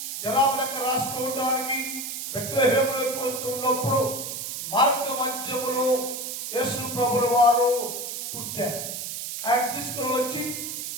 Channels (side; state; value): right; noise; hiss, 6 dB below the sound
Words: జనాభా లెక్క రాసుకోవడానికి బెత్లెహేములోకి వస్తున్నప్పుడు మార్గ మధ్యములో యేసు ప్రభుల వారు పుట్టారు. ఆయన తీసుకుని వచ్చి